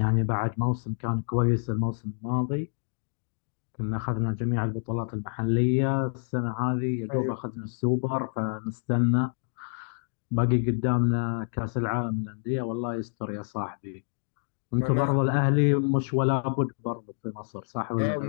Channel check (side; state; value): right; silent; digital silence